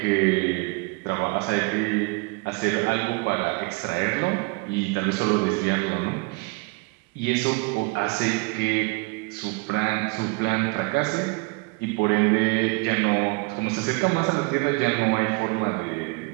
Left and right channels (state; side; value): quieter; left; 28.4 dB